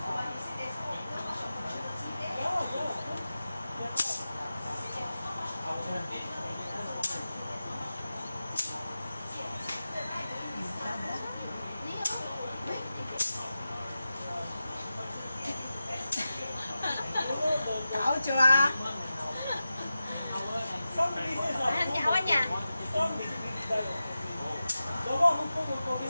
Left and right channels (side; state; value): both; inverted; correlation -0.92